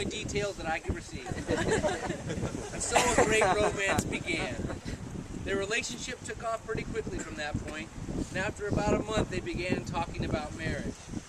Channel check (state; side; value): identical; both; correlation 1.00